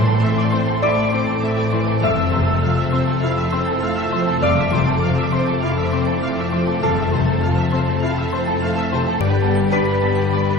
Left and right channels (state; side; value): normal; both; correlation 0.49